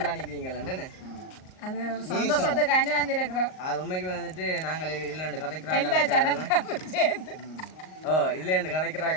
அது ஒரு சந்தோஷத்துக்காண்டி வந்திருக்கிறோம். அது உண்மைக்கு வந்துட்டு நாங்கள் இதில் ரெண்டு எல்லா கதைக்கிறாங்க. சேனல்காரும் சேர்ந்து இதுல ரெண்டு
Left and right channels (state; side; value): late; right; 38 ms